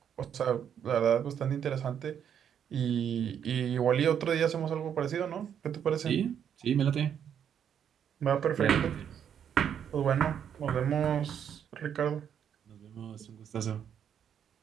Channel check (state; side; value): quieter; left; 8.6 dB